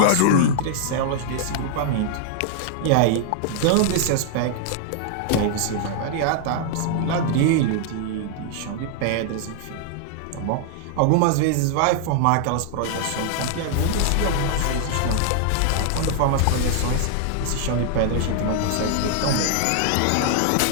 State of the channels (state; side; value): different; both; correlation -0.01